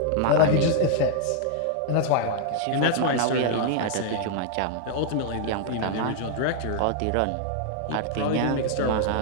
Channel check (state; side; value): different; both; correlation 0.00